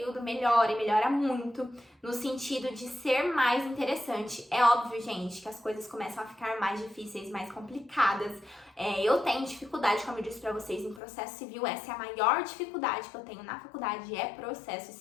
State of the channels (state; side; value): drops out; right; at 11.0 s